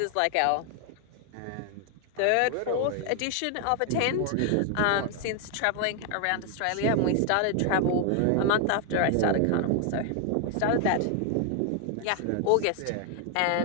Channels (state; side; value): different; both; correlation 0.00